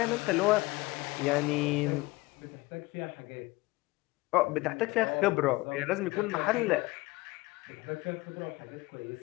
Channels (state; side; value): quieter; right; 21.5 dB